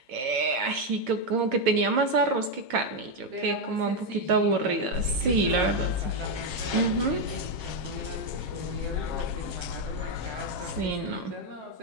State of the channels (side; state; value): left; late; 8.0 ms